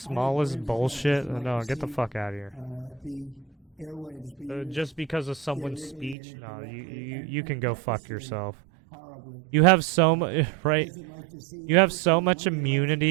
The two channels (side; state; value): left; drops out; at 6.2 s